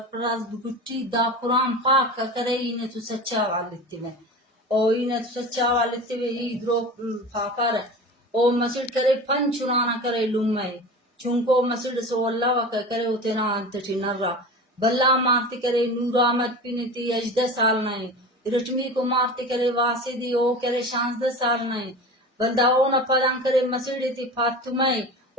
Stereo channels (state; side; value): normal; both; correlation 0.32